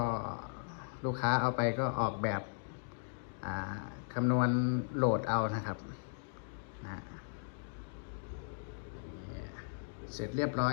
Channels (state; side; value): silent; right; digital silence